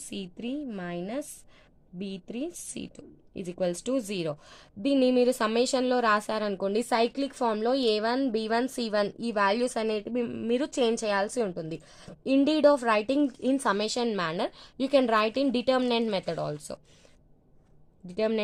c3 minus b3 c2 is equals to 0. దీన్ని మీరు సమ్మేషన్లో రాశారనుకోండి, సైక్లిక్ ఫామ్లో a1 b1 c1 ఈ వాల్యూస్ అనేటివి మీరు చేంజ్ చేయాల్సి ఉంటుంది. Indeed of writing in summation manner you can write in determinant method also.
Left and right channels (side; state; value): both; identical; correlation 1.00